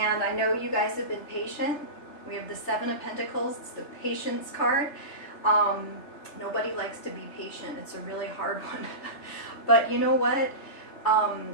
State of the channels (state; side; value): late; right; 3.3 ms